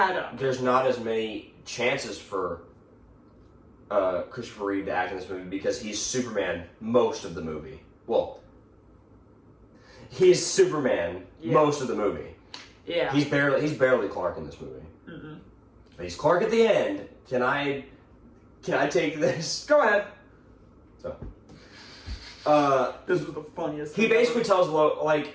up. There's not as many chances for Christopher Reeve to act in this movie because he's Superman most of the movie. Well, he's Superman most of the movie. Yeah. He's barely Clark in this movie. Mm-hmm. But he's Clark at the end. Can I take this? Go ahead. So, this was the funniest. He basically tells Lois,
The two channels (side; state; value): both; identical; correlation 1.00